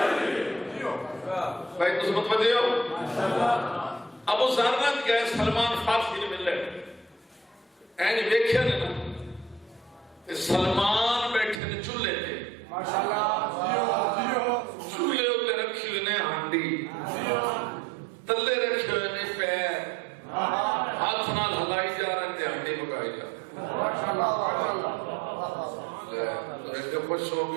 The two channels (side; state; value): left; drops out; at 11.6 s